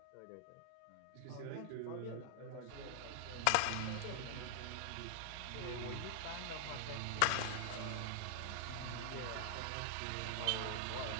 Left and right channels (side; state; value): both; different; correlation 0.00